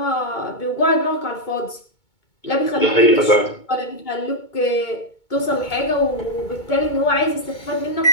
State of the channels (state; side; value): late; right; 2.2 ms